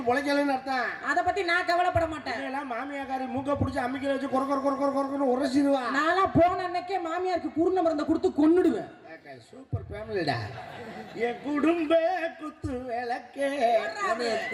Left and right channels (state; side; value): identical; both; correlation 1.00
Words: பொழைக்கலன்னு அர்த்தம். அதை பத்தி நான் கவலைப்பட மாட்டேன். எல்லாம் மாமியாக்காரி மூக்க பிடிச்சி அம்மிக்கல வச்சு கொரன்னு உரசிடுவா. நான்லாம் போன அன்னைக்கே மாமியாருக்கு குருண மருந்தை கொடுத்து கொன்னுடுவேன். சூப்பர் ஃபேமிலிடா. என் குடும்ப குத்து விளக்கே